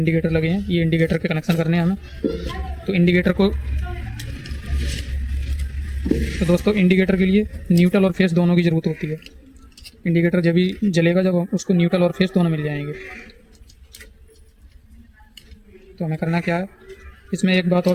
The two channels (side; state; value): both; identical; correlation 1.00